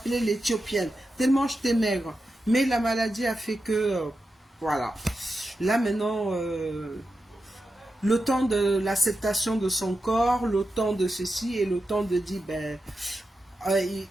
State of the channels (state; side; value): normal; both; correlation 0.90